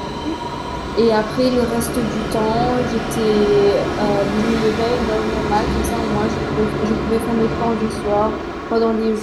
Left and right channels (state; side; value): identical; both; correlation 1.00